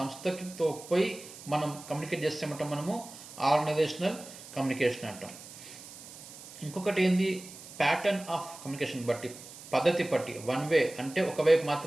పోయి మనం కమ్యూనికేట్ చేస్తామంటాం మనము ఆర్గనైజేషనల్ కమ్యూనికేషన్ అంటాం. ఇంకొకటి ఏంది ప్యాటర్న్ ఆఫ్ కమ్యూనికేషన్ బట్టి, పద్ధతి బట్టి. వన్ వే అంటే ఒకవైపు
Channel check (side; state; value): right; noise; hiss, 16 dB below the sound